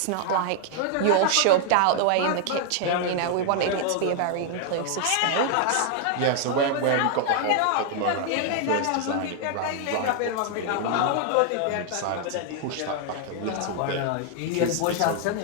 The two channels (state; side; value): different; both; correlation 0.00